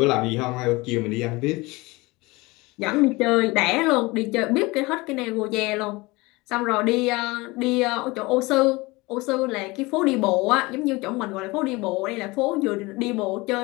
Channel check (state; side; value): quieter; right; 23.0 dB